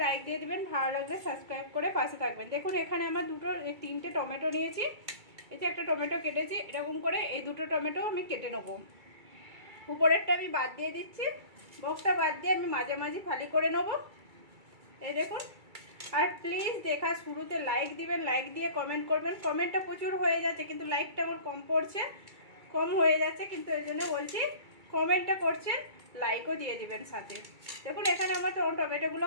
লাইক দিয়ে দিবেন, ভালো লাগবে সাবস্ক্রাইব করে পাশে থাকবেন। দেখুন এখানে আমার তিনটে টমেটো নিয়েছি। এই যে একটা টমেটো কেটেছি, এরকম করে এই দুটো টমেটো আমি কেটে নেবো। উপরেরটা আমি বাদ দিয়ে দিচ্ছি, বক্সটা বাদ দিয়ে আমি মাঝামাঝি ফালি করে নেবো। এই দেখুন। আর প্লিজ দেখা শুরুতে লাইক দিবেন, লাইক দিয়ে কমেন্ট করবেন। কমেন্টটা প্রচুর হয়ে যাচ্ছে কিন্তু লাইকটা আমার কম হয়ে যাচ্ছে, কিন্তু এই জন্য বলছি কমেন্টটা করছেন, লাইকও দিয়ে দিবেন সাথে। দেখুন এখানে আমার টমেটোগুলো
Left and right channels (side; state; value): left; late; 2.3 ms